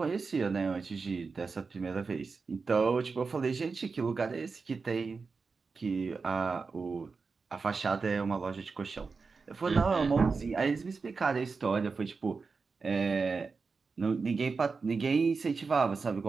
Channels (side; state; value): left; quieter; 4.6 dB